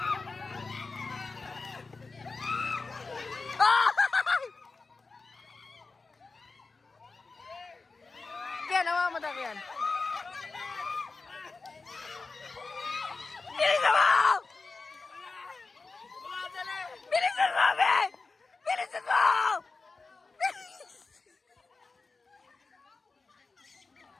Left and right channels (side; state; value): right; quieter; 4.0 dB